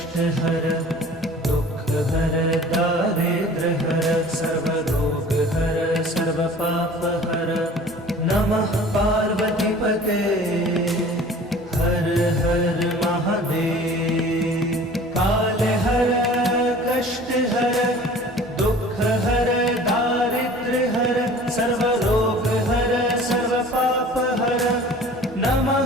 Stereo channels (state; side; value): normal; both; correlation 0.45